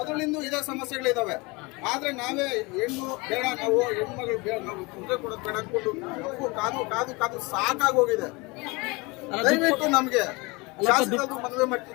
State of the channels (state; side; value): quieter; right; 25.8 dB